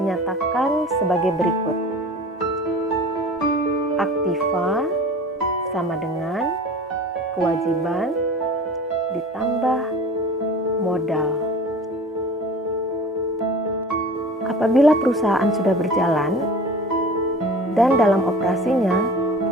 sebagai berikut. Aktiva sama dengan kewajiban ditambah modal. Apabila perusahaan sudah berjalan dan dalam operasinya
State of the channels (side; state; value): both; normal; correlation 0.40